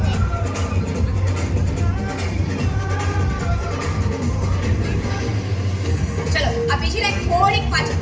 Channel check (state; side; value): identical; both; correlation 1.00